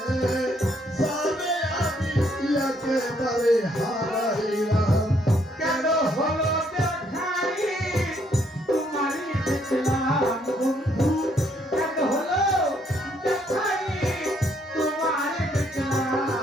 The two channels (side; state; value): both; normal; correlation 0.69